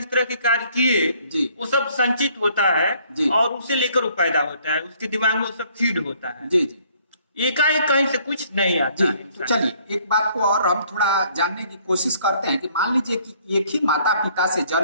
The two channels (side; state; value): both; inverted; correlation -0.62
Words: तरह के कार्य किए, जी। वो सब संचित होता है जी। और उसे लेकर वो पैदा होता है, उसके दिमाग में वो सब फीड होता है। जी जी एकाएक कहीं से कुछ नहीं आता जी। है तो इंसान। चलिए एक बात को और हम थोड़ा जानने की कोशिश करते हैं कि मान लीजिए कि एक ही माता पिता से